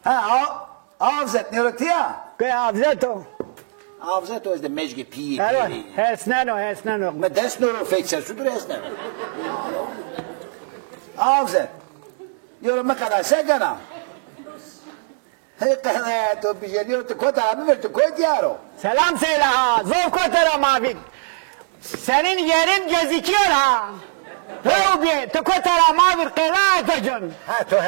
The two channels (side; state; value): left; silent; digital silence